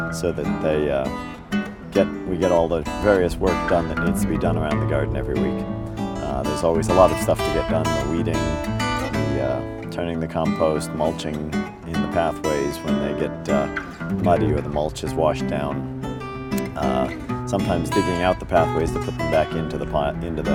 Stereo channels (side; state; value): both; identical; correlation 1.00